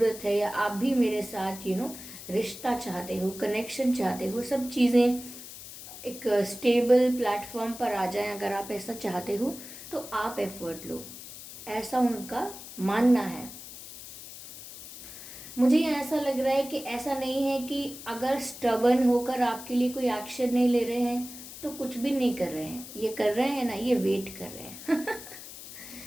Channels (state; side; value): noise; left; hiss, 13 dB below the sound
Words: है, या आप भी मेरे साथ रिश्ता चाहते हो, कनेक्शन चाहते हो, सब चीज़ें एक स्टेबल प्लेटफॉर्म पर आ जाएं, अगर आप ऐसा चाहते हो तो आप एफर्ट लो, ऐसा उनका मानना है। मुझे ऐसा लग रहा है कि ऐसा नहीं है कि अगर स्टबर्न होकर आपके लिए कोई एक्शन नहीं ले रहे हैं तो कुछ भी नहीं कर रहे हैं। ये कर रहे हैं ना, ये वेट कर रहे हैं।